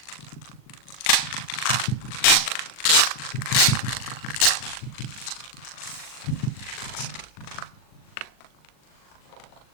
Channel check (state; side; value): late; right; 39 ms